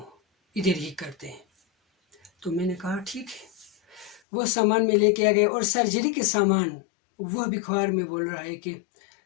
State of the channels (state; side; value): drops out; right; at 4.2 s